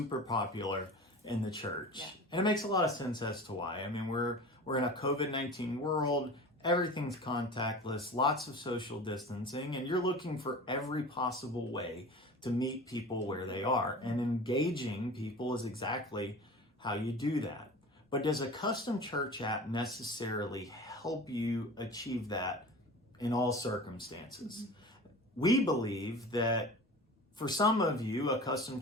popular in the church. Yeah. And it makes a lot of sense as to why. I mean, we're in a COVID-19 world. Everything's contactless, lots of social distancing, and you're looking for every possible way to meet people where they are. And engaging people is exactly how you do that. But does a custom church app necessarily help you achieve that in all circumstances? We believe that for some of you, a custom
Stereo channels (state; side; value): normal; both; correlation 0.37